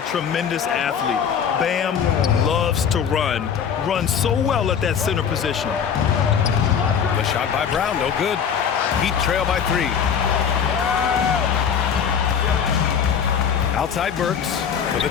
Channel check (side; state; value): right; quieter; 7.5 dB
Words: tremendous athlete. Bam loves to run. Runs so well at that center position. The shot by Brown, no good. Heat trail by 3. Outside Burks for